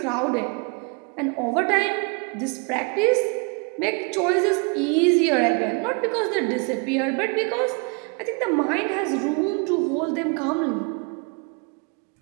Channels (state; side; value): quieter; left; 34.5 dB